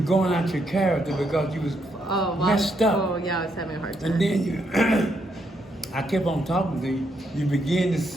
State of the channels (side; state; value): both; normal; correlation 0.77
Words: going out your character because you was messed up. Oh, yeah, I was having a hard time. And then I kept on talking to you. You begin to